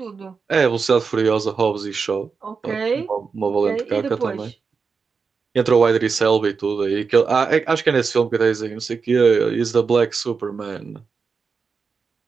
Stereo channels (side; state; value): left; quieter; 5.2 dB